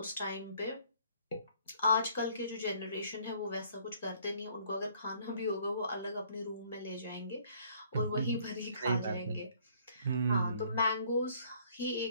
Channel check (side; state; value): both; inverted; correlation -0.60